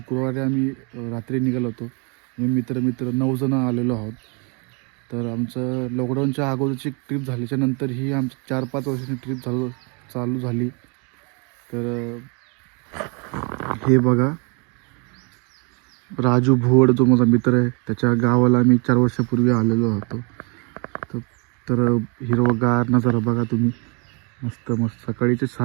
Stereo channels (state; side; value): quieter; left; 33.8 dB